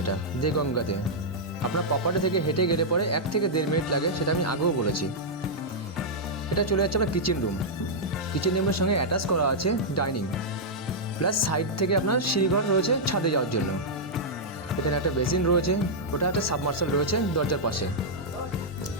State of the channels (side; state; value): both; normal; correlation -0.07